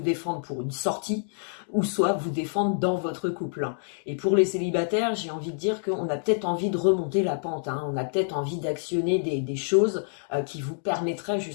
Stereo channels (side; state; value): right; silent; digital silence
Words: défendre pour une sortie, ou soit vous défendre dans votre couple. Et pour les célibataires, j'ai envie de dire qu'on a peut-être envie de remonter la pente, hein, on a peut-être envie d'actionner des choses qui vous permettraient